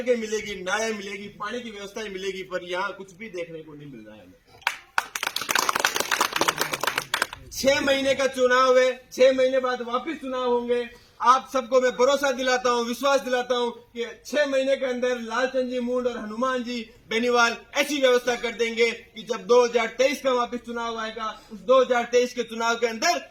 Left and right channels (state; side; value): identical; both; correlation 1.00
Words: मिलेगी, नालें मिलेगी, पानी की व्यवस्था मिलेगी, पर यहाँ कुछ भी देखने को नहीं मिल रहा है हमें। 6 महीने का चुनाव है, 6 महीने बाद वापस चुनाव होंगे। आप सबको मैं भरोसा दिलाता हूं, विश्वास दिलाता हूं कि 6 महीने के अंदर लालचंद जी मुंड और हनुमान जी बेनीवाल ऐसी व्यवस्था कर देंगे कि जब 2023 का वापस चुनाव आएगा, उस 2023 के चुनाव के अंदर